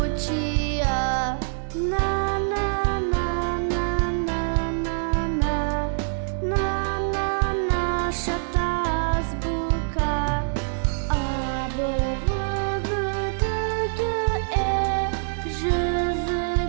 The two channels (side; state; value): left; silent; digital silence